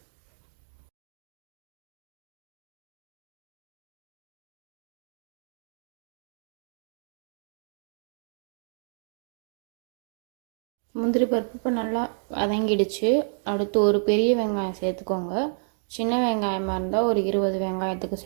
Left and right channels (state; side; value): silent; left; digital silence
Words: முந்திரி பருப்பு இப்போ நல்லா வதங்கிடுச்சு. அடுத்து ஒரு பெரிய வெங்காயம் சேர்த்துக்கோங்க. சின்ன வெங்காயமாக இருந்தால் ஒரு 20 வெங்காயத்துக்கு